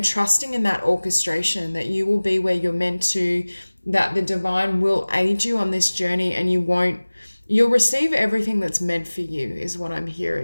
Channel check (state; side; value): inverted; both; correlation -1.00